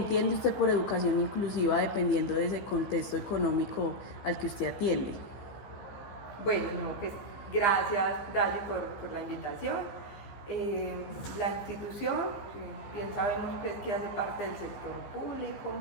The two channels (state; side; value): late; right; 15 ms